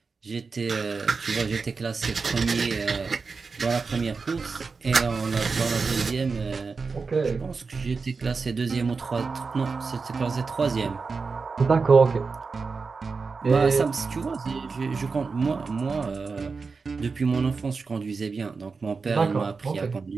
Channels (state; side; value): quieter; left; 4.6 dB